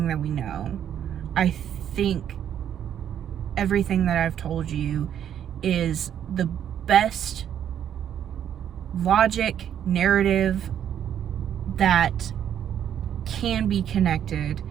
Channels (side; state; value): left; quieter; 9.6 dB